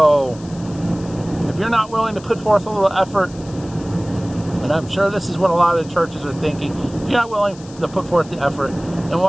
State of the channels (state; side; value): noise; left; hiss, 22 dB below the sound